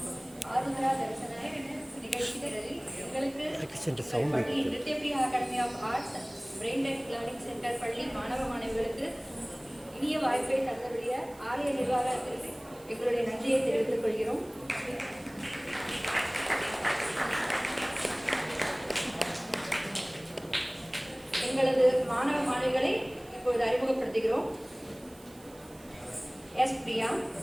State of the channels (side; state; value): right; noise; hiss, 23 dB below the sound